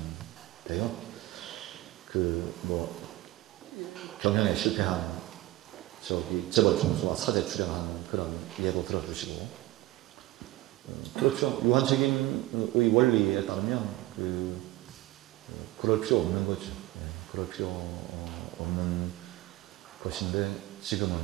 경영에 실패한 재벌 총수와 사제 출연하는 그런 예도 들어주시고, 그렇죠. 유한 책임의 원리에 따르면 그럴 필요 없는 거죠. 그럴 필요 없는 것인데, 지금은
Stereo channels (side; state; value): left; quieter; 17.8 dB